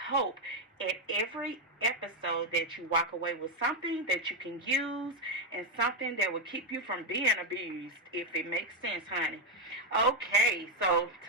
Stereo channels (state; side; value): normal; both; correlation 0.04